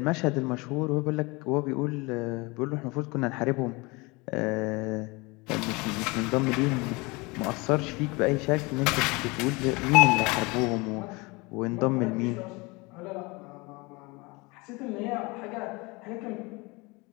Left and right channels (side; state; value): right; quieter; 25.6 dB